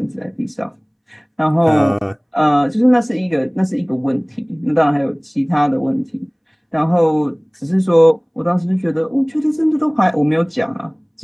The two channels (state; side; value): identical; both; correlation 1.00